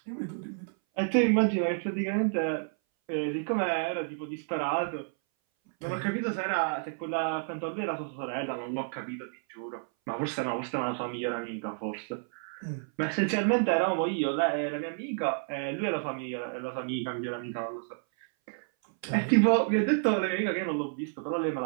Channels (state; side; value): silent; left; 58 dB below the other